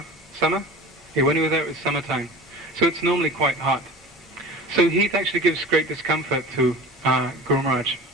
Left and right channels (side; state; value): both; normal; correlation 0.37